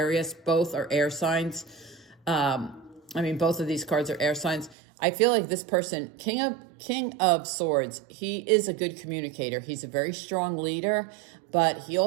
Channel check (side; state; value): left; drops out; at 4.8 s